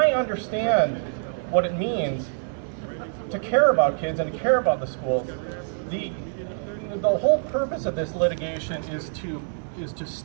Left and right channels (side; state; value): left; silent; 58 dB below the other